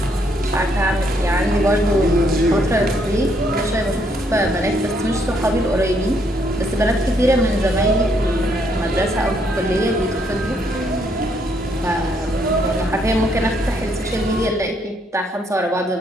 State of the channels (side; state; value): both; normal; correlation 0.71